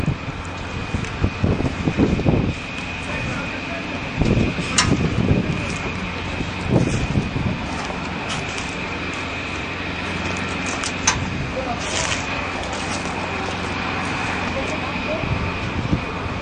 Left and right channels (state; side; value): identical; both; correlation 1.00